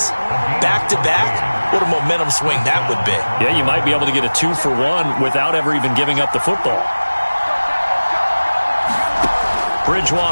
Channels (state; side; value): inverted; both; correlation -1.00